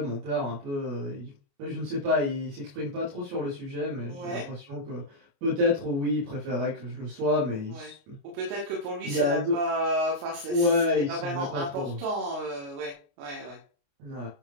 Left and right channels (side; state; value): left; late; 29 ms